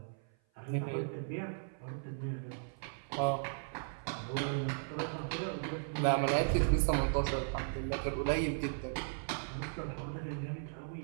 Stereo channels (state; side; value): silent; left; 53 dB below the other